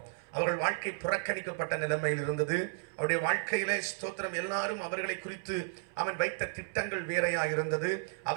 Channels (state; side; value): silent; left; 56 dB below the other